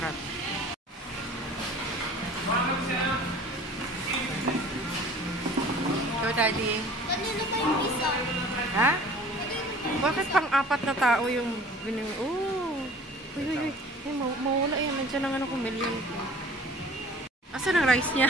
Go, Daddy. Kanino ba yung isa? Ha? Bakit pang-apat na tao yung bining... Oh! Uy, uy, uy. Ay, mawala yan. Nandiyan lang ano kung million ko. Asan ang rice niya?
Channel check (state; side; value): normal; both; correlation 0.47